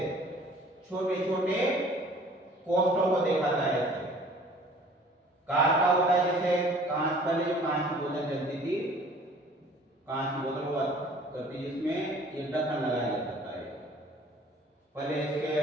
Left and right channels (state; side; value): normal; both; correlation 0.51